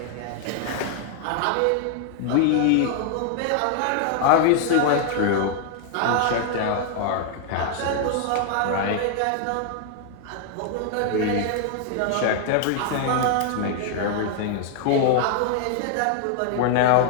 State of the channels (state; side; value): different; both; correlation 0.00